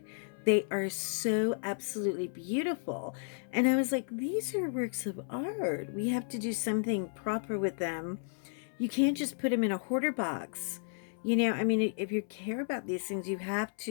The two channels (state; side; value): silent; right; 56 dB below the other